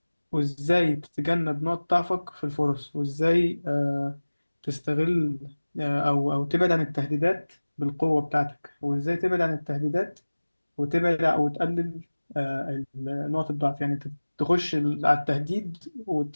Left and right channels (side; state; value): both; inverted; correlation -1.00